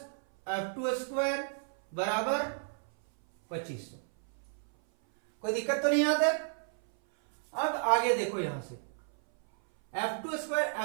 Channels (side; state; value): left; silent; 56 dB below the other